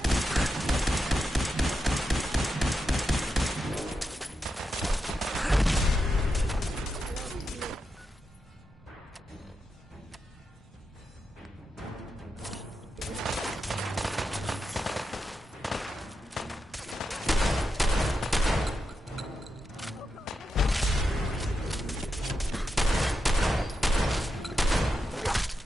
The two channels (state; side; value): normal; both; correlation 0.87